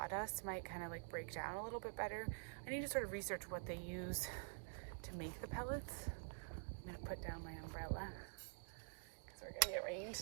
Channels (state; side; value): silent; left; digital silence